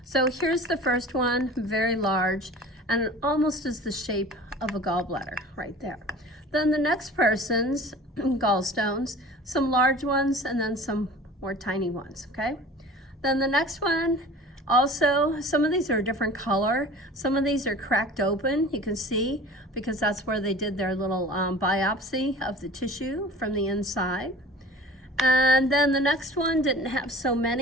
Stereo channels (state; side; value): normal; both; correlation 0.41